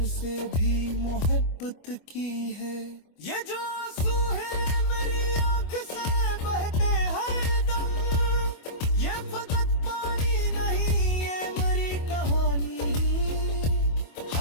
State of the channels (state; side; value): late; right; 25 ms